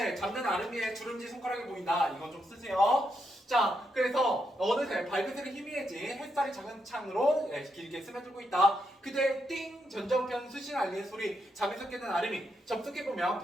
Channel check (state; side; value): normal; both; correlation 0.81